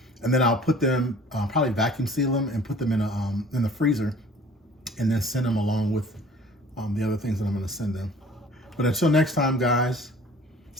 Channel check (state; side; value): normal; both; correlation 0.49